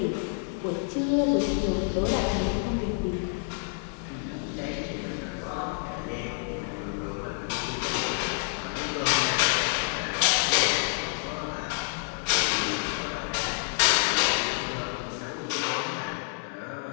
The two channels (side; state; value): right; silent; 56 dB below the other